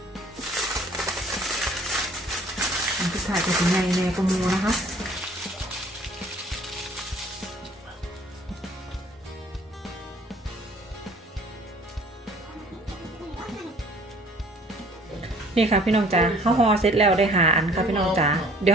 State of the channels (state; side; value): normal; both; correlation 0.54